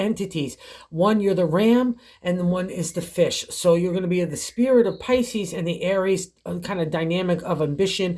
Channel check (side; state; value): both; identical; correlation 1.00